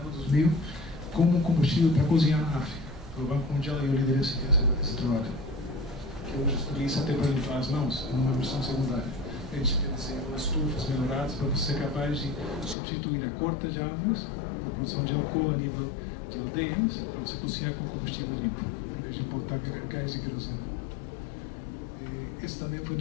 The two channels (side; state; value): right; drops out; at 12.8 s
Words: como um combustível para cozinhar na África. O Banco Mundial e eu liderei esse trabalho. Que hoje estudei isso até para limpar as mãos, numa versão secundária. A gente tem desenhado estufas melhoradas para você ser capaz de substituir a corta de árvores, a produção de álcool a nível de aldeias, para você cozinhar com combustível limpo, em vez de importar gás de querosene. Esse também foi em